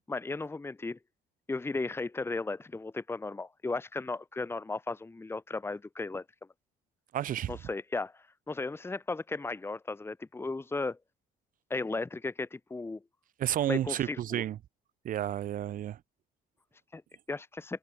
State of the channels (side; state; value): both; normal; correlation 0.57